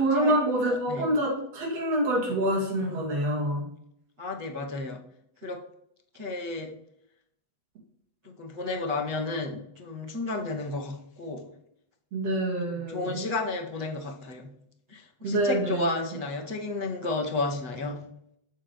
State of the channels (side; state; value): left; late; 8.1 ms